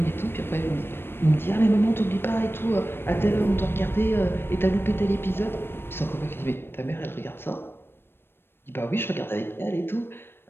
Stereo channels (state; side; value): late; right; 0.11 ms